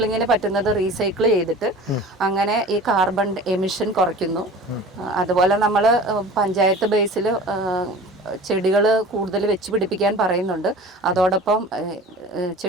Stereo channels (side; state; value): both; normal; correlation 0.40